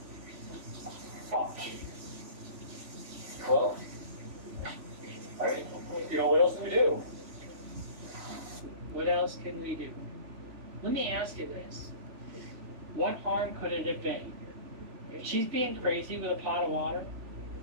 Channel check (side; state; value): left; late; 3.0 ms